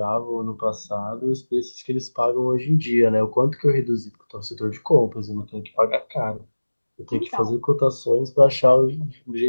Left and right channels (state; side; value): inverted; both; correlation -1.00